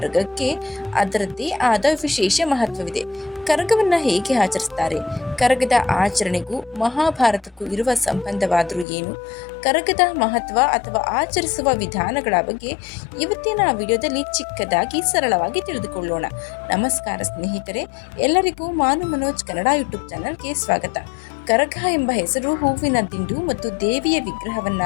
ಅದರದ್ದೇ ಆದ ವಿಶೇಷ ಮಹತ್ವವಿದೆ. ಕರಗವನ್ನು ಹೇಗೆ ಆಚರಿಸ್ತಾರೆ? ಕರಗದ ಆಚರಣೆಗೂ ಮಹಾಭಾರತಕ್ಕೂ ಇರುವ ಸಂಬಂಧವಾದರೂ ಏನು? ಕರಗದ ಮಹತ್ವ ಅಥವಾ ಆಚರಿಸುವ ವಿಧಾನಗಳ ಬಗ್ಗೆ ಇವತ್ತಿನ ವಿಡಿಯೋದಲ್ಲಿ ಚಿಕ್ಕದಾಗಿ ಸರಳವಾಗಿ ತಿಳಿದುಕೊಳ್ಳೋಣ. ನಮಸ್ಕಾರ ಸ್ನೇಹಿತರೆ, ಎಲ್ಲರಿಗೂ ಮಾನು ಮನೋಜ್ ಕನ್ನಡ ಯೂಟ್ಯೂಬ್ ಚಾನಲ್ಗೆ ಸ್ವಾಗತ. ಕರಗ ಎಂಬ ಹೆಸರು ಹೂವಿನ ದಿಂಡು ಮತ್ತು ದೇವಿಯ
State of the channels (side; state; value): right; drops out; at 8.8 s